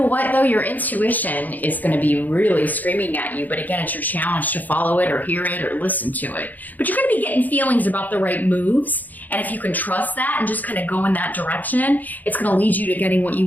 what, though? Your intuition is going to be really screaming at you. But again, it's your challenge to follow it or hear it or listen to it. But you're going to be getting feelings about the right moves. And if you can trust that and just kind of go in that direction, it's going to lead you to getting what you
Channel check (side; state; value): right; late; 0.083 ms